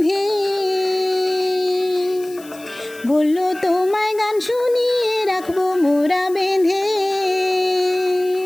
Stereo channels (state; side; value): noise; left; hiss, 21 dB below the sound